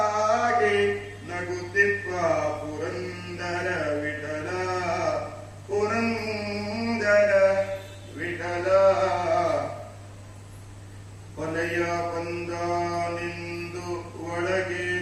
ನಗುತ್ತಿಪ್ಪ ಪುರಂದರ ವಿಠಲ. ಪುರಂದರ ವಿಠಲ. ಹೊಲೆಯ ಬಂದಾನೆಂದು ಒಳಗೆ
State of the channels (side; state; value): both; identical; correlation 1.00